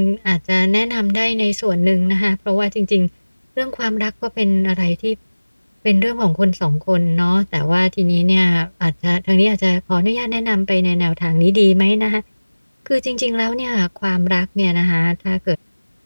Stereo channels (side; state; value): both; inverted; correlation -1.00